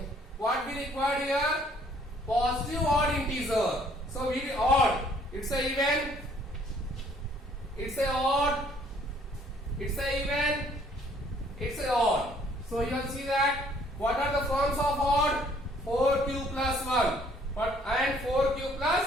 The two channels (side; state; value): both; normal; correlation 0.61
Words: what we required here? Positive odd integer. So we odd. It's a even. It's a odd. It's a even. It's a odd. So you will see that what are the forms of odd? 4q plus 1 and 4q